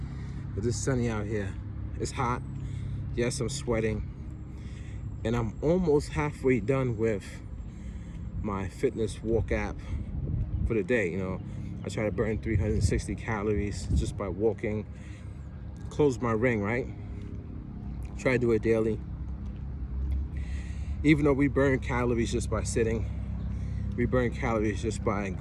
but it's sunny out here. It's hot. Yes, I'm sweating, and I'm almost halfway done with my fitness walk app for the day. You know, I try to burn 360 calories just by walking. Close my ring, right? Try to do it daily. Even though we burn calories just by sitting, we burn calories just by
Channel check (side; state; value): both; identical; correlation 1.00